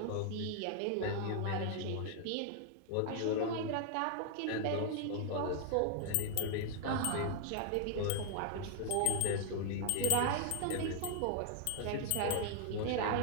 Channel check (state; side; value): different; both; correlation 0.00